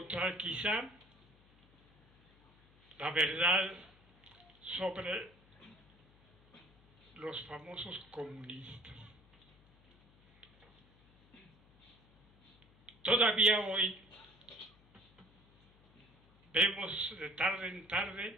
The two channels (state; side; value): noise; left; hum, 29 dB below the sound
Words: quizá la verdad sobre los famosos comunistas. Todavía hoy vemos de tarde en